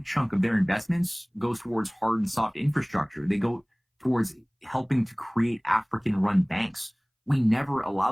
chunk of their investments goes towards hard and soft infrastructure. They go towards helping to create African run banks. We never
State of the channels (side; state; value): both; identical; correlation 1.00